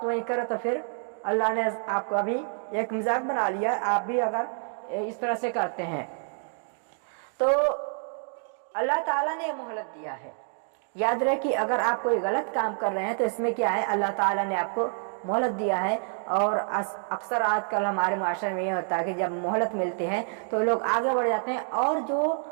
वही करें तो फिर अल्लाह ने आपको अभी एक मजाक बना लिया। आप भी अगर इस तरह से करते हैं तो अल्लाह ताला ने मोहलत दिया है। याद रहे कि अगर आप कोई गलत काम कर रहे हैं तो इसमें क्या है, अल्लाह ताला ने आपको मोहलत दिया है। और अक्सर आजकल हमारे माशरे में ये होता है कि जब मोहलत मिलती है तो लोग आगे बढ़ जाते हैं, और जो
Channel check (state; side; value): silent; left; digital silence